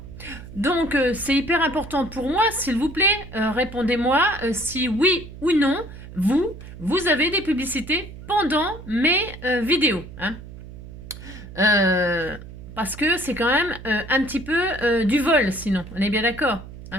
Donc c'est hyper important pour moi, s'il vous plaît, répondez-moi si oui ou non, vous avez des publicités pendant mes vidéos, hein. Parce que c'est quand même un petit peu du vol, sinon, on est bien d'accord,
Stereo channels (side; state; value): right; noise; hum, 14 dB below the sound